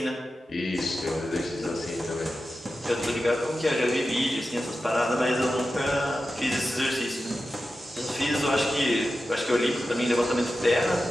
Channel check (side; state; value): both; normal; correlation 0.92